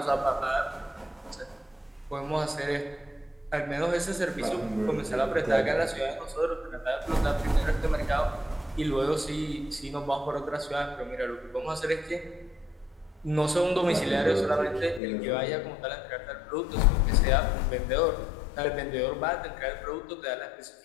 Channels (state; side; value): drops out; right; at 15.0 s